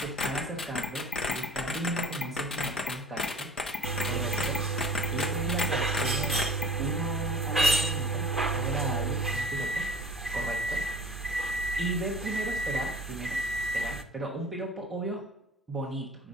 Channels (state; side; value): normal; both; correlation 0.44